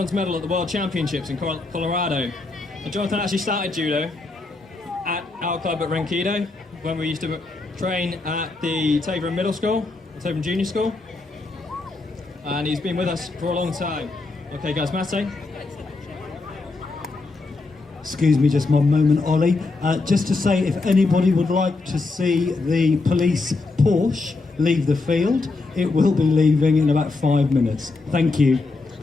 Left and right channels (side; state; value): right; quieter; 3.5 dB